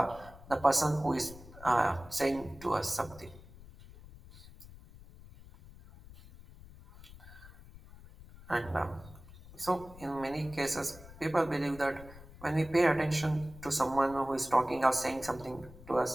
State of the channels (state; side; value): noise; left; rumble, 18 dB below the sound